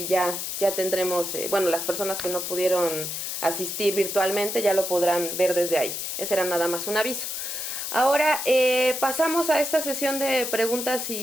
ya tendremos, bueno, las personas que no pudieron asistir virtualmente ya lo podrán ver desde ahí. Ese era nada más un aviso. Ahora pasamos a esta sesión de preguntas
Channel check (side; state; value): left; noise; hiss, 4 dB below the sound